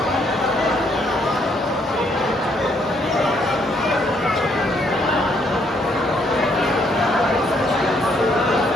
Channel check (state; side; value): normal; both; correlation 0.70